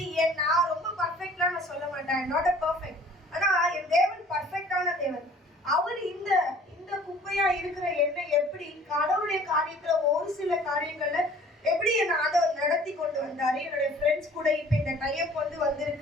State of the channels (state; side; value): normal; both; correlation 0.51